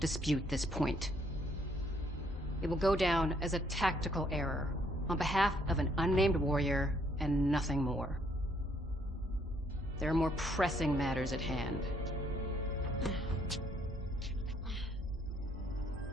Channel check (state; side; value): normal; both; correlation 0.68